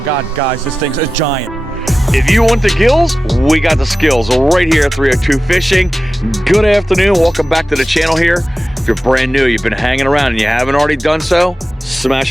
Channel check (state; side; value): normal; both; correlation 0.94